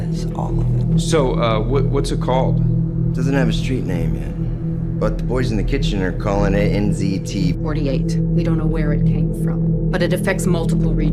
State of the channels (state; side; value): identical; both; correlation 1.00